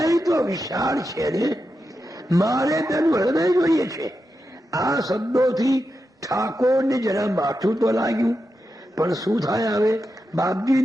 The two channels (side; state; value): both; normal; correlation 0.88